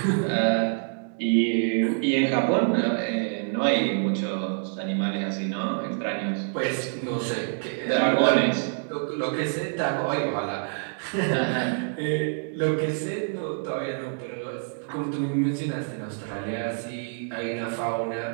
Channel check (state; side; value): silent; left; 61 dB below the other